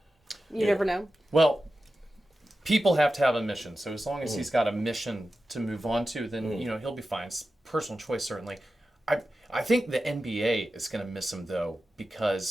you never know. Well, people have to have a mission. So as long as he's got a mission to move on to, then he'll be fine. It's personal choice, certainly. I think the NBA is going to miss him though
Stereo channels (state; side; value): normal; both; correlation 0.93